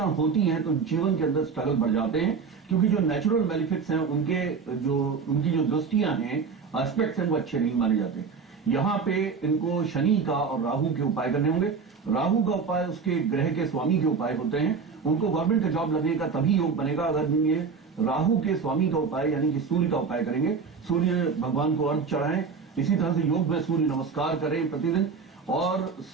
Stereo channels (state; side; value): quieter; left; 5.4 dB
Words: होती हैं तो जीवन के अंदर स्ट्रगल बढ़ जाते हैं, क्योंकि जो नेचुरल बेनिफिट्स हैं उनकी जो दृष्टियां हैं, एस्पेक्ट्स हैं, वो अच्छे नहीं माने जाते। यहाँ पे इनको शनि का और राहु के उपाय करने होंगे। राहु का उपाय उसके ग्रह के स्वामी के उपाय होते हैं। उनको गवर्नमेंट का जॉब लगने का तभी योग बनेगा अगर ये राहु के स्वामी का उपाय यानी कि सूर्य का उपाय करेंगे। सूर्य भगवान को अर्घ चढ़ाएं। इसी तरह से योग में सूर्य नमस्कार करें प्रतिदिन, और